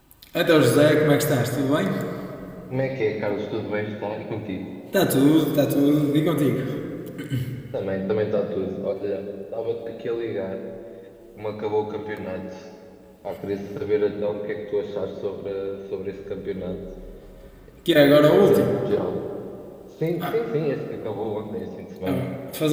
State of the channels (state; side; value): identical; both; correlation 1.00